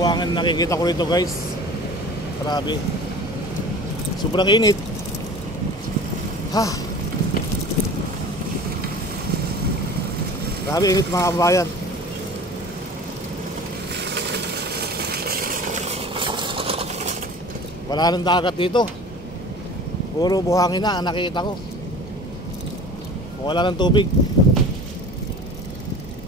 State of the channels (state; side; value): normal; both; correlation 0.41